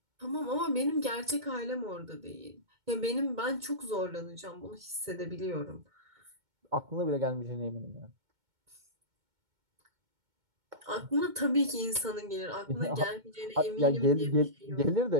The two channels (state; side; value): late; left; 2.2 ms